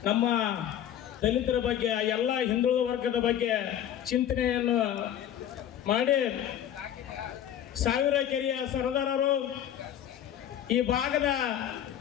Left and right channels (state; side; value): quieter; right; 10.5 dB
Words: ನಮ್ಮ ದಲಿತರ ಬಗ್ಗೆ ಎಲ್ಲ ಹಿಂದುಳಿದ ವರ್ಗದ ಬಗ್ಗೆ ಚಿಂತನೆಯನ್ನು ಮಾಡಿ ಸಾವಿರ ಕೆರೆಯ ಸರದಾರರು, ಈ ಭಾಗದ